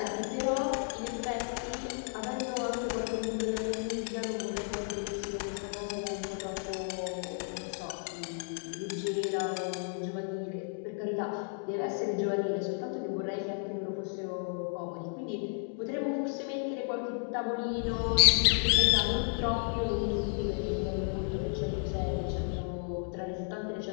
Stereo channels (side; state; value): right; silent; 56 dB below the other